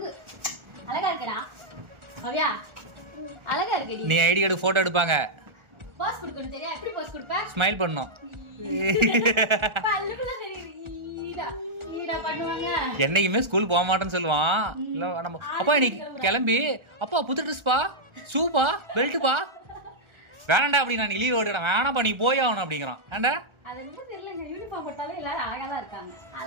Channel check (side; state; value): left; late; 1.4 ms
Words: அழகா இருக்கடா மவியா, அழகா இருக்கடி. நீ ஐடி கார்டு போட்டோ எடுப்பாங்க, பாஸ் கொடுக்கணும். தெரியா எப்படி பாஸ் கொடுப்ப? ஸ்மைல் பண்ணணும். பல்லுக்குள்ள தெரியுது ஈடா பண்ணுவாங்க. என்னைக்குமே ஸ்கூல் போக மாட்டேன்னு சொல்லுவான். இல்ல நம்ம அப்பா இன்னைக்கு கிளம்பி அப்பா புது ட்ரெஸ் பா, ஷூப்பா, பெல்ட்டுப்பா. வேணாண்டா அப்படி நான் லீவ் ஓடுறேன். வேணாப்பா நீ போய் ஆகணும் அப்படிங்கிறான். ஏண்டா அது வந்து தெரியலங்க, யூனிஃபார்ம் போட்டாலே எல்லாரும் அழகா தான் இருக்காங்க.